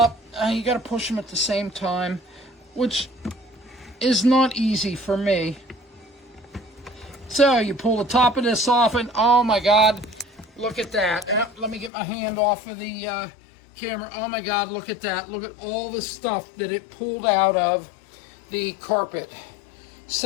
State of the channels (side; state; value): right; drops out; at 11.9 s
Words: and you got to push them at the same time, which is not easy for me. So you pull the top of this off, and oh my god, look at that. Let me get my hand off of the camera. Oh my god, look at that. Look at all the stuff that it pulled out of the carpet.